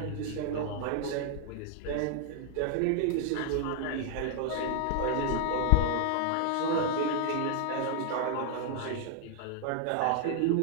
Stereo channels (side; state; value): both; different; correlation 0.00